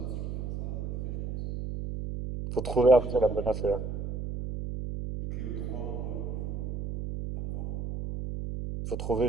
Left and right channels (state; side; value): noise; right; hum, 4 dB below the sound